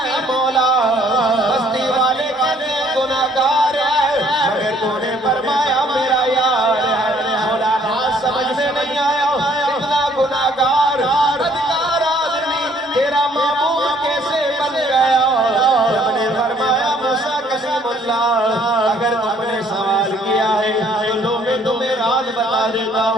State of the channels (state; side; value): normal; both; correlation 0.62